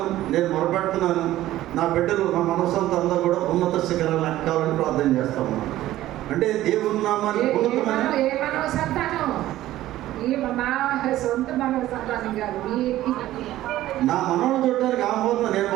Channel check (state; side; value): quieter; left; 14.7 dB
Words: నేను మొరపెడుతున్నాను. నా బిడ్డలు, నా మనసంతా అందరూ కూడా ఉన్నత శిఖరాలు ఎక్కాలని ప్రార్థన చేస్తాము. అంటే దేవుని నామాన్ని ఉన్నతమైన సొంత మనోసంతానం కాదు. నా మనవాళ్ళు చూడటానికి ఆహ్వానం నేను